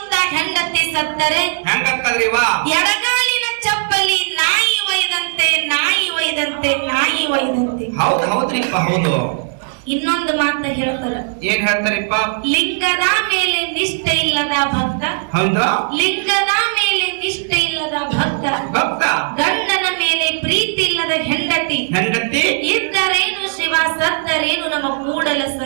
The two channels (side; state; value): left; silent; 62 dB below the other